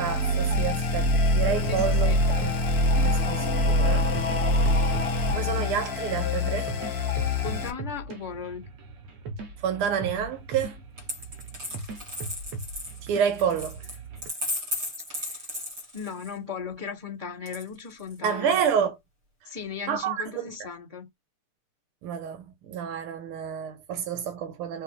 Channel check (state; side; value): late; left; 6.7 ms